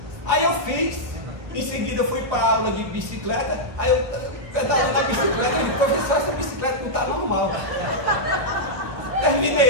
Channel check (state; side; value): late; left; 1.5 ms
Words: Aí eu fiz, em seguida eu fui para a aula de bicicleta. Aí eu pedalando a bicicleta, e professor, essa bicicleta não está normal.